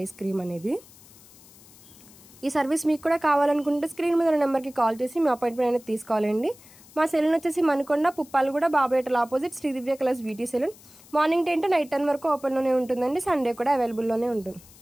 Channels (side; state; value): left; noise; hiss, 23 dB below the sound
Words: క్రీమ్ అనేది. ఈ సర్వీస్ మీకు కూడా కావాలనుకుంటే స్క్రీన్ మీద ఉన్న నెంబర్కి కాల్ చేసి మీ అపాయింట్మెంట్ అనేది తీసుకోవాలండి. మా సెలూన్ వచ్చేసి మణికొండ, పుప్పాలగూడ, బాబాయటల opposite Shri Divya colours beauty salon. Morning 10 to night 10 వరకు ఓపెన్లోనే ఉంటుందండి. సండే కూడా అవైలబుల్లోనే ఉంటుంది.